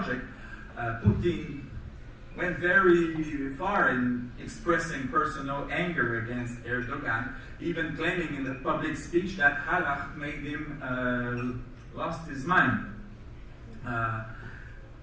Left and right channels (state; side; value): identical; both; correlation 1.00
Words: Putin went very far in expressing personal anger against Erdogan, even claiming in the public speech that Halak made him lost his mind.